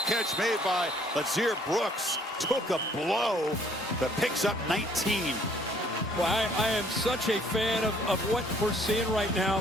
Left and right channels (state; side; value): normal; both; correlation 0.61